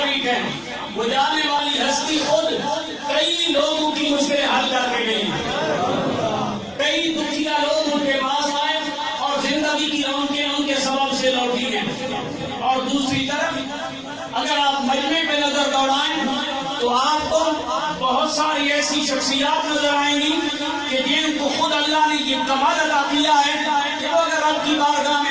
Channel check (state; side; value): identical; both; correlation 1.00